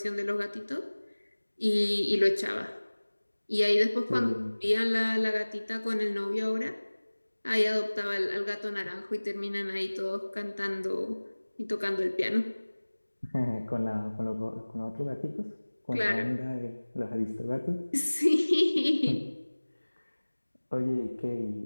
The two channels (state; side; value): inverted; both; correlation -1.00